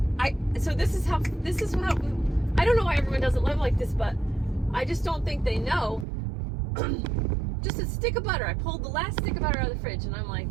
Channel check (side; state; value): left; drops out; at 6.1 s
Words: This is how, I don't know why everyone doesn't live like this, but I just don't think they know. Just a stick of butter. I pulled the last stick of butter out of the fridge and I'm like,